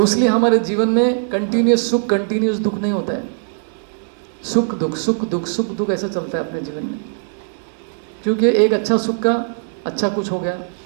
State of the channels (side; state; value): left; silent; digital silence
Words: इसलिए हमारे जीवन में कंटिन्यूस सुख कंटिन्यूस दुख नहीं होता है। सुख दुख सुख दुख सुख दुख ऐसा चलता है अपने जीवन में, क्योंकि एक अच्छा सुख का अच्छा कुछ हो गया,